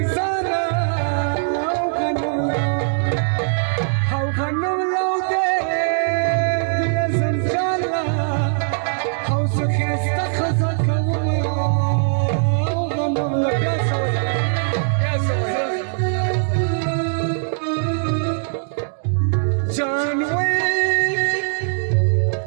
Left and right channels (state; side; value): silent; left; digital silence